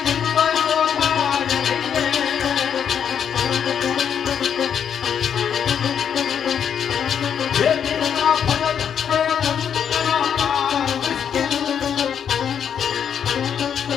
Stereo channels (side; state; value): right; quieter; 8.2 dB